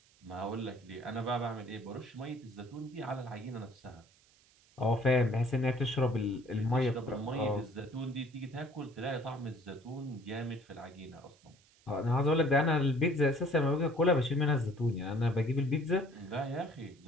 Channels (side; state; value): right; noise; hiss, 30 dB below the sound